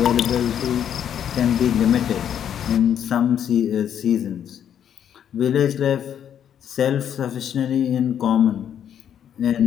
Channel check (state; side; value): quieter; right; 9.3 dB